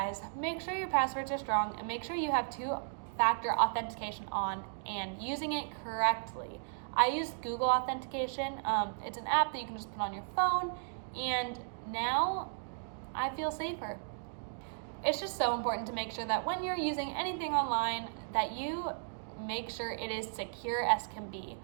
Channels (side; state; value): left; silent; digital silence